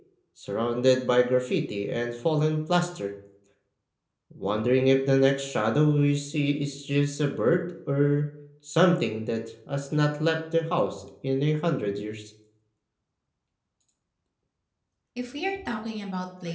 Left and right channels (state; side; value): identical; both; correlation 1.00